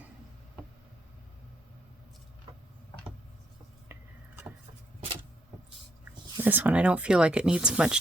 This one I don't feel like it needs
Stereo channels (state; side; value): normal; both; correlation 0.73